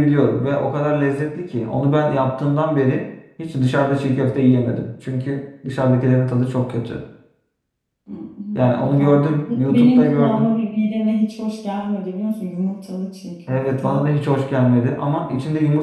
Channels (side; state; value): both; identical; correlation 1.00